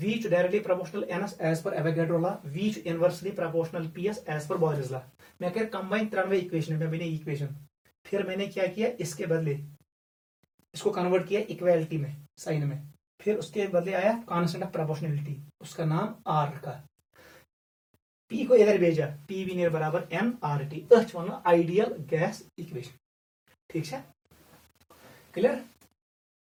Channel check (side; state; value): both; identical; correlation 1.00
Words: directly proportional NS as per Avogadro law, V inversely proportional PS as per Boyle's law. मैं कह combine 93 equation में बनी equation. फिर मैंने क्या किया? इसके बदले इसको कन्वर्ट किया इक्वालिटी में, साइन में. फिर उसके बदले आया कांस्टेंट ऑफ प्रोपोर्शनलिटी, उसका नाम R रखा. P को इधर भेजा, PV नियर बराबर nRT. अच वन आइडियल गैस इक्वेशन. ठीक है? Clear?